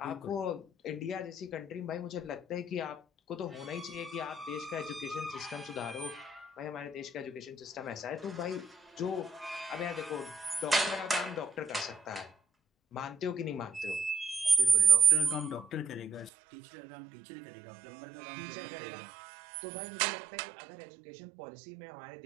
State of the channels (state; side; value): drops out; left; at 16.3 s